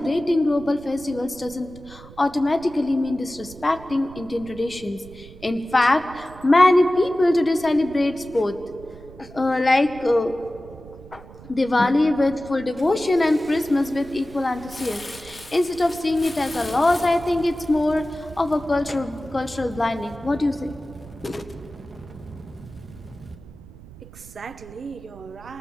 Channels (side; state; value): right; noise; rumble, 19 dB below the sound